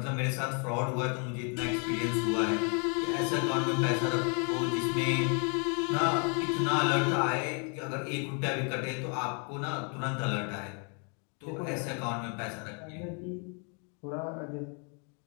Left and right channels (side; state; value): right; quieter; 38.5 dB